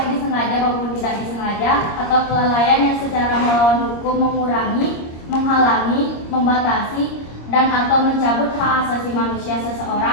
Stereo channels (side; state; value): right; late; 26 ms